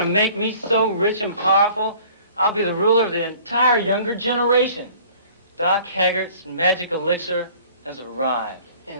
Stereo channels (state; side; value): inverted; both; correlation -0.51